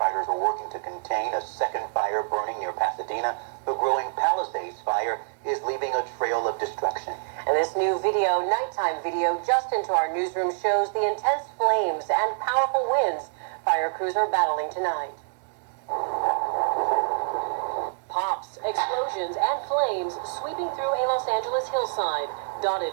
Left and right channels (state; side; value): silent; left; 61 dB below the other